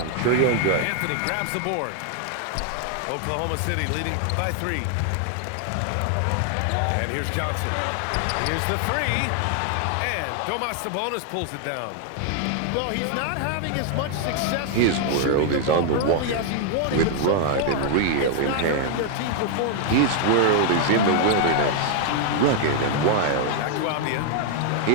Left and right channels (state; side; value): different; both; correlation 0.00